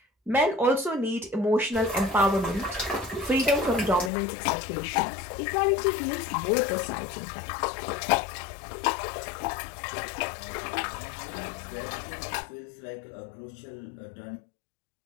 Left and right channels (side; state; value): right; drops out; at 4.1 s